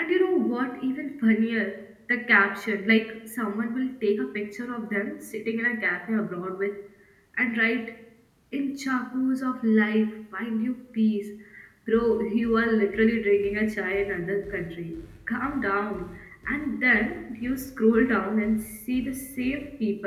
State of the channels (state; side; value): identical; both; correlation 1.00